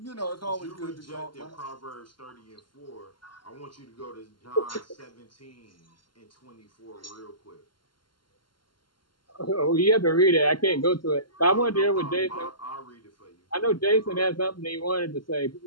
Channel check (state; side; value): late; right; 0.72 ms